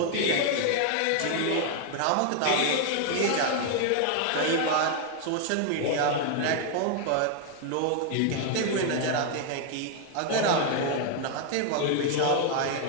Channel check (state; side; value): different; both; correlation 0.00